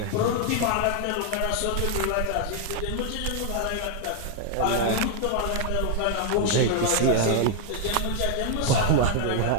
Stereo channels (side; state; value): both; different; correlation 0.00